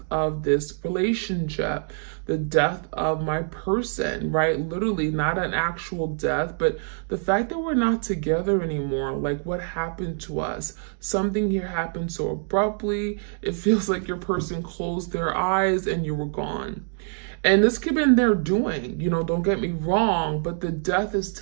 of this relationship, the death of my person, right? Literally, not an actual death, but the fact that we're not together anymore. Like, what happened to us? Something here happened so abruptly. It feels like your person closed their eyes and you were gone. And this could have been their doing, don't get me wrong, but the death is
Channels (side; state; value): left; silent; 62 dB below the other